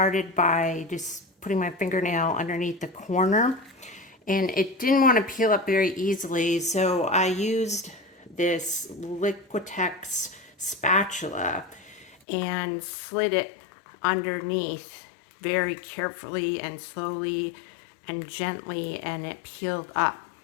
by just putting my fingernail underneath the corner, and it didn't want to peel up very easily, so I used this Liquitex spatula and slid it underneath very carefully and slowly and gently, and it peeled up.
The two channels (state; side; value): drops out; right; at 12.2 s